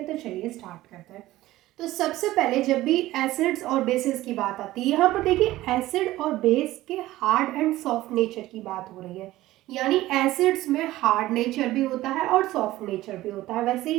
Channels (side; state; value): left; quieter; 16.4 dB